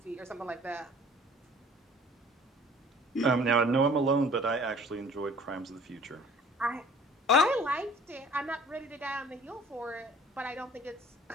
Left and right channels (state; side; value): normal; both; correlation 0.51